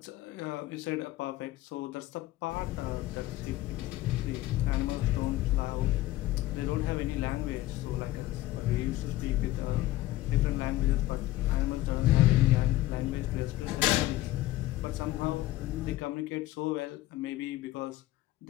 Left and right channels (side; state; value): right; quieter; 16.4 dB